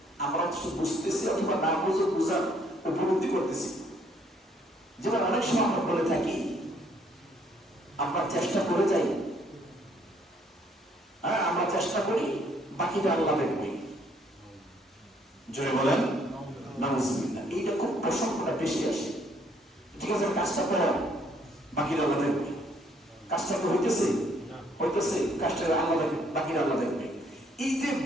আমরা শুধু বুঝতেছি অথবা না বুঝে বুঝার উপলব্ধি করতেছি। যেমন অনেক সময় আমরা বলে থাকি, আমরা চেষ্টা করে যাই, আমরা চেষ্টা করি, বাকিটা আল্লাহ দেখবে। জোরে বলেন নাউযুবিল্লাহ। এইটা খুব প্রসঙ্গটা বেশি আসে। ঠিক আছে, কাজটা করো, বাকিটা আল্লাহ দেখবে। কাজটা তো হইতেছে, কাজটা আল্লাহ দেখবে, বাকিটা আল্লাহ দেখবে। এই যে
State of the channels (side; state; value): both; normal; correlation 0.66